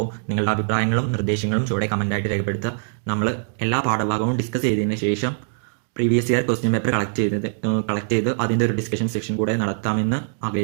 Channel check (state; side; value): silent; left; digital silence